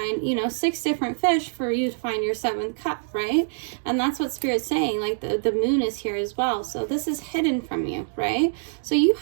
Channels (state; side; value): silent; left; digital silence